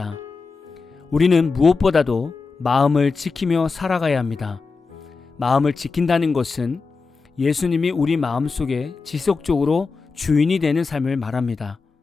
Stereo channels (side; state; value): right; quieter; 4.5 dB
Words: 우리는 무엇보다도 마음을 지키며 살아가야 합니다. 마음을 지킨다는 것은 예수님이 우리 마음속에 지속적으로 주인이 되는 삶을 말합니다.